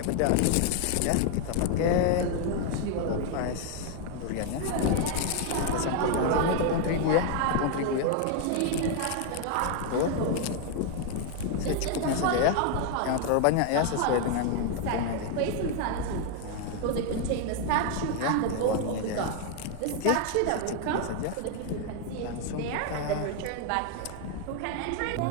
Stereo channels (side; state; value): both; different; correlation 0.00